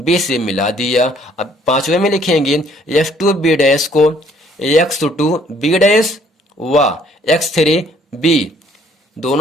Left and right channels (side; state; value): both; normal; correlation 0.62